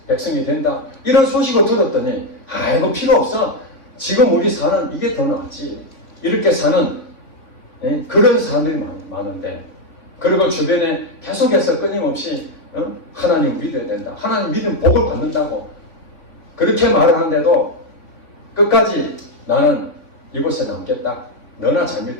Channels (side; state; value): right; late; 3.6 ms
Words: 백성이 된다. 이런 소식을 들었더니 이거 필요 없어. 지금 우리 사는 이게 더 낫지. 이렇게 사는 그런 사람들이 많은데, 그리고 주변에 계속해서 끊임없이 하나님 믿어야 된다. 하나님 믿으면 복을 받는다고 그렇게 말을 하는데도 끝까지 나는 이곳에 남겠다. 너나 잘